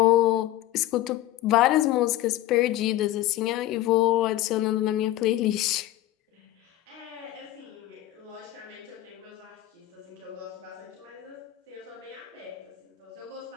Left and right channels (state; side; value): quieter; right; 14.7 dB